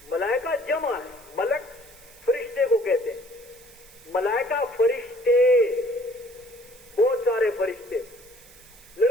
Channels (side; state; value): right; noise; hiss, 23 dB below the sound